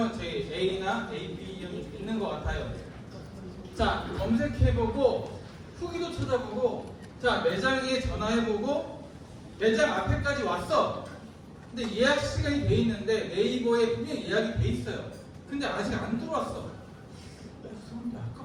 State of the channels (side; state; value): both; identical; correlation 1.00